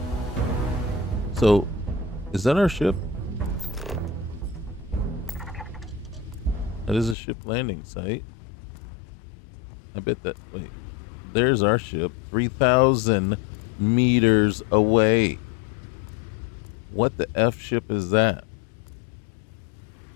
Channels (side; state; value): right; drops out; at 7.2 s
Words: So, is that our ship? That is a ship landing site. I bet that, wait, there's our ship 3,000 meters away. What the F ship is that?